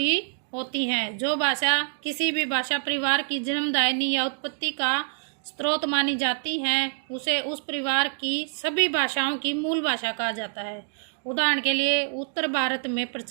होती हैं। जो भाषा किसी भी भाषा परिवार की जन्मदायिनी या उत्पत्ति का स्रोत मानी जाती हैं उसे उस परिवार की सभी भाषाओं की मूल भाषा कहा जाता है। उदाहरण के लिए उत्तर भारत में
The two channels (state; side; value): silent; left; 61 dB below the other